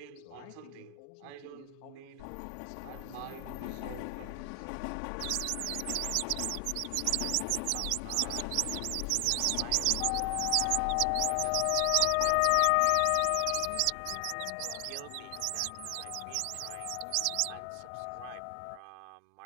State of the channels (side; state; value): both; different; correlation 0.00